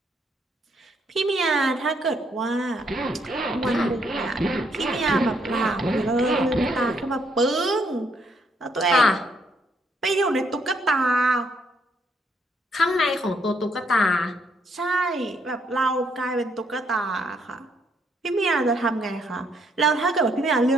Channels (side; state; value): both; normal; correlation 0.71